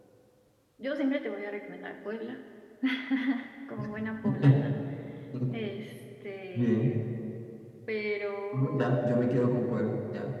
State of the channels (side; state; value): both; identical; correlation 1.00